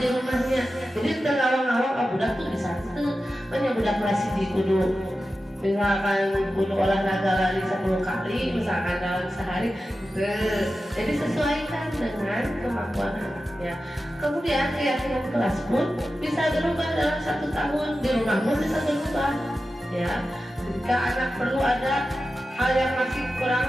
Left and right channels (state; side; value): normal; both; correlation 0.93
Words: rumahnya. Jadi ngawang-ngawang budak tuh bisa budak kelas di kudu misalkan kudu olahraga lari 10 kali misalkan dalam sehari. Jadi sesuaikan dengan kemampuan anaknya. Kemudian keyakinan kelas pun bisa berubah dalam 1 tahun. Di rumah pun bisa berubah. Ya, jika anak perlu ada hal yang masih kurang